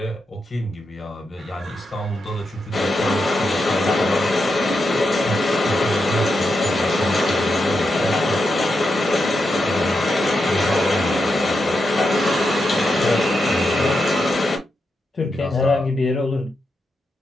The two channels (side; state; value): both; normal; correlation 0.85